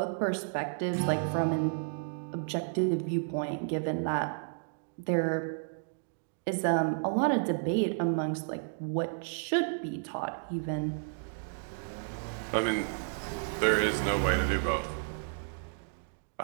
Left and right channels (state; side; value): silent; left; digital silence